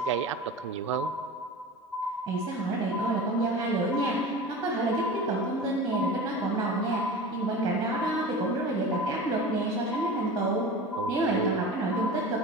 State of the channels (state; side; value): normal; both; correlation 0.33